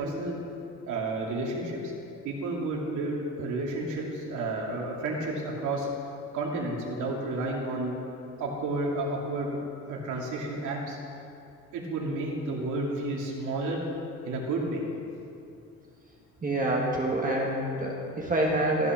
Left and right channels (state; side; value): normal; both; correlation 0.28